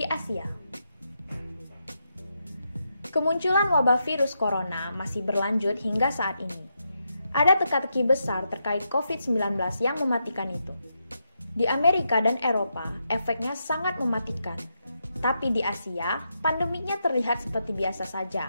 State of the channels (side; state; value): both; inverted; correlation -0.83